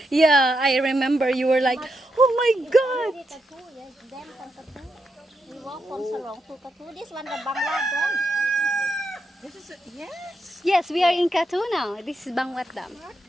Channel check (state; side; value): normal; both; correlation 0.83